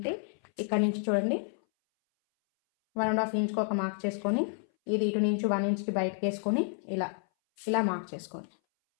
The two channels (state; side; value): silent; right; 58 dB below the other